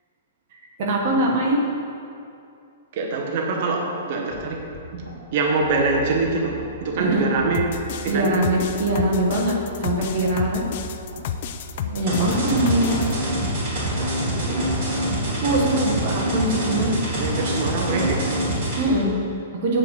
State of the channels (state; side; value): inverted; both; correlation -0.34